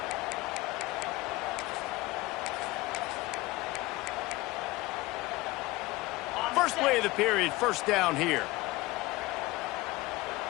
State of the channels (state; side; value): quieter; right; 20.5 dB